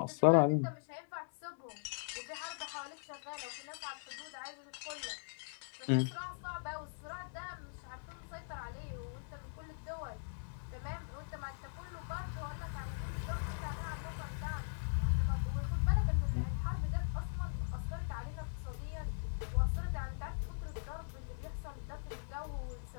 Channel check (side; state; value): right; silent; digital silence